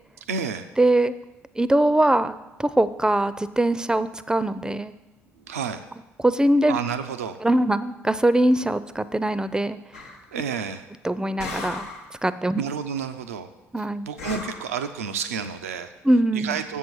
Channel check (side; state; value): both; normal; correlation 0.85